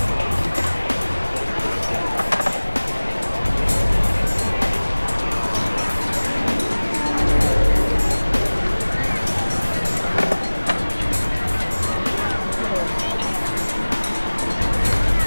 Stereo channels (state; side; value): inverted; both; correlation -1.00